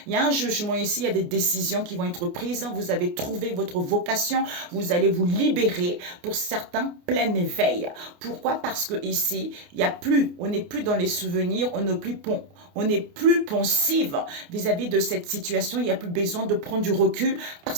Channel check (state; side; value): late; left; 28 ms